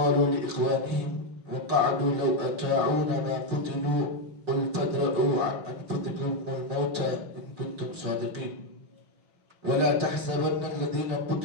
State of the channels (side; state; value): left; late; 5.0 ms